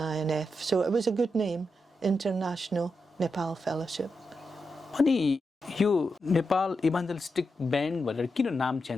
So it was a good name, International Nepal Fellowship. अनि यो Nepal इभान्जेलिस्टिक band भनेर किन नाम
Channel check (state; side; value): normal; both; correlation 0.86